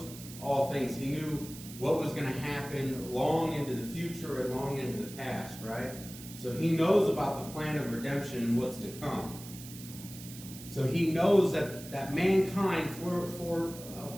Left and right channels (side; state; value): right; noise; hiss, 14 dB below the sound